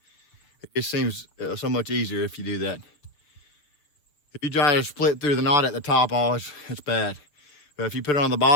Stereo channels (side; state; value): right; late; 6.8 ms